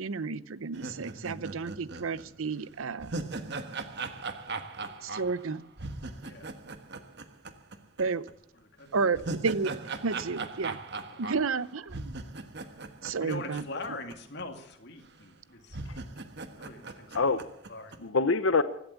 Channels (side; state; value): both; normal; correlation -0.16